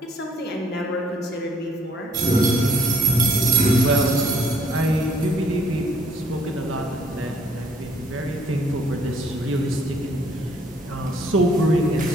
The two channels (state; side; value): normal; both; correlation 0.62